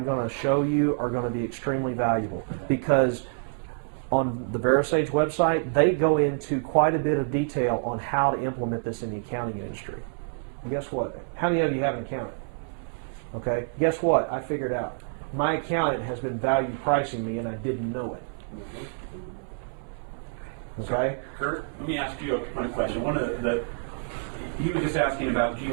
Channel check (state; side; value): silent; left; 60 dB below the other